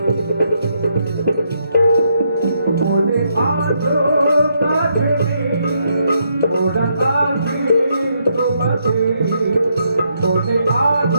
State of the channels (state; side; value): inverted; both; correlation -0.76